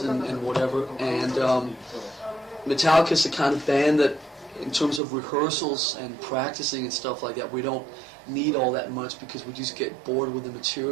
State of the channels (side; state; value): left; drops out; at 5.0 s